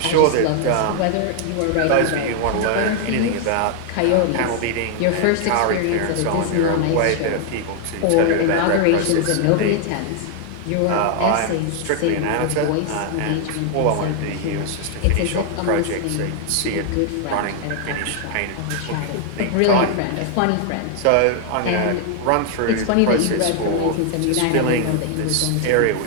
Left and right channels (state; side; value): different; both; correlation 0.00